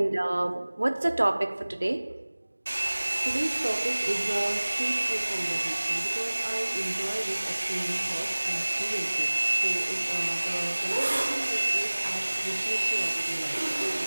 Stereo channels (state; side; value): inverted; both; correlation -1.00